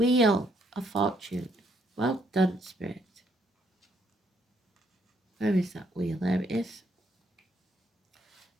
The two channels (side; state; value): both; normal; correlation 0.71